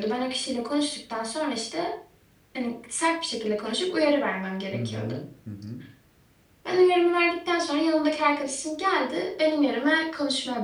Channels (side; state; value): both; identical; correlation 1.00